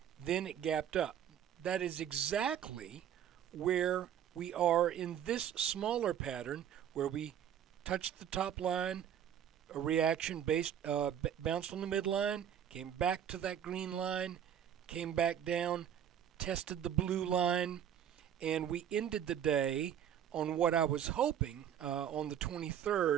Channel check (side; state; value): left; quieter; 9.6 dB